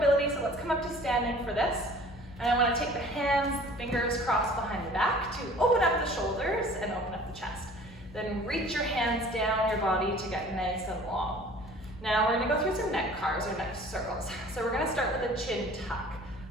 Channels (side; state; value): both; normal; correlation 0.48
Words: Standing for this, and I want to take the hands, fingers crossed behind the back to open up the shoulders and open up the chest. Then reach your hands down your body to get nice and long. Now we're going to go through some neck carves or neck circles. So we're going to start with a chin tuck,